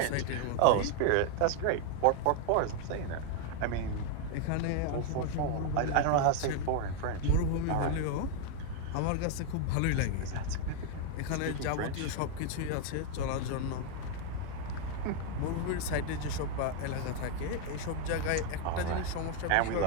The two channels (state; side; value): different; both; correlation 0.00